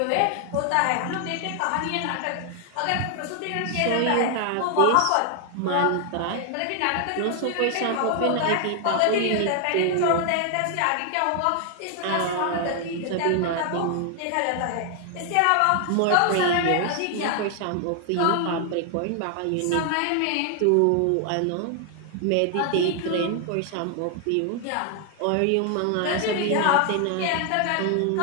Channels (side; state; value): both; different; correlation 0.00